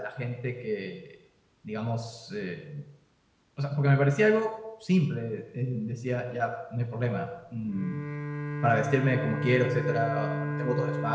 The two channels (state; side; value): identical; both; correlation 1.00